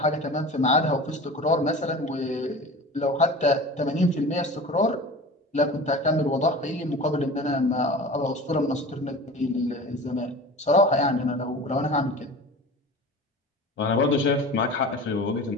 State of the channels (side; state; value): both; normal; correlation 0.36